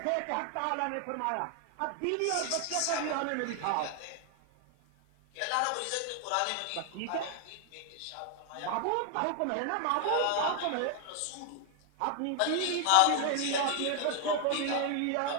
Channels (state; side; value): different; both; correlation 0.00